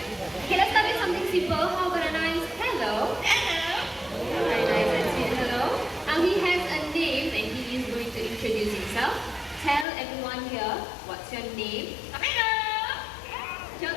Okay, let's start with something simple. How about a nice hello? Hello. Very nice and sweet hello. Now he has a name and he is going to introduce himself. Tell everyone here, what's your name? Amigo.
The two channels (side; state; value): right; drops out; at 9.9 s